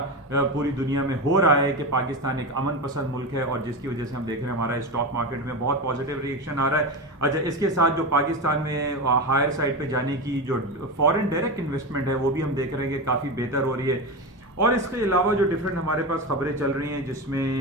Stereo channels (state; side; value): normal; both; correlation 0.19